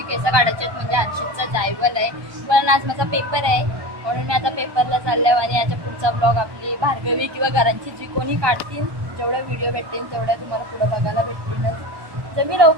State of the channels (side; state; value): left; late; 1.1 ms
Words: केस काढायची आहेत, म्हणजे हर्षदचा जायवल आहे. पण आज माझा पेपर आहे म्हणून मी आता पेपरला चालले आणि याच्या पुढचा ब्लॉग आपली भार्गवी किंवा घरांची जी कोणी काढतील, जेवढे व्हिडिओ भेटतील तेवढ्या तुम्हाला पुढे बघायला भेटतीलच. जर मी